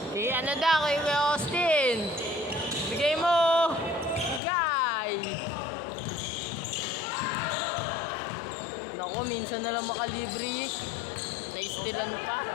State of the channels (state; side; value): drops out; right; at 4.4 s